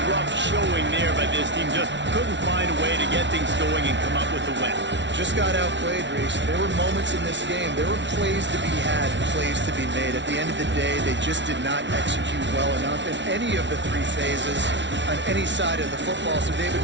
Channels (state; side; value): late; left; 0.52 ms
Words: rough showing there by this team. Just couldn't find a way to get things going and come up with the win. Just got outplayed, Reese. There were moments in this game. There were plays to be had, plays to be made. At the end of the day, they just did not execute well enough in any of the 3 phases on any side of the football. So, David,